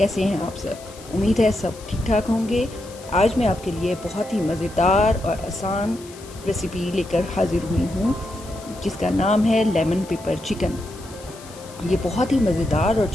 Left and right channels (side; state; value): left; noise; hiss, 20 dB below the sound